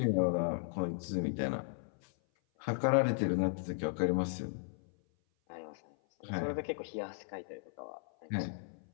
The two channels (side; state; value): right; silent; 54 dB below the other